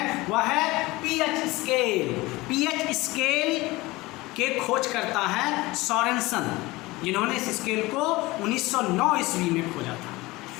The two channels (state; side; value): quieter; right; 20.9 dB